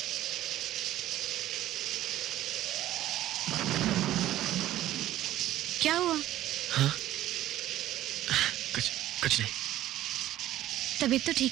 क्या हुआ? हाँ? कुछ नहीं। तबीयत तो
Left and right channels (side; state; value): left; quieter; 13.9 dB